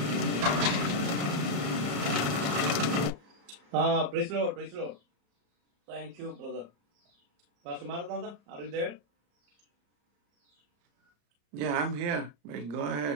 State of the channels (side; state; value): left; late; 34 ms